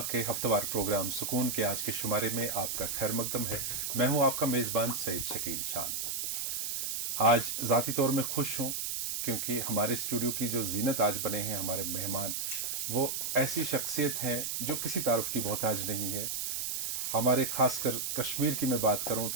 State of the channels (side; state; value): right; noise; hiss, 2 dB below the sound